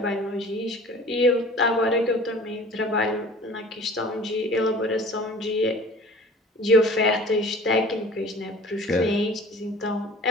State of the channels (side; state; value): both; normal; correlation 0.45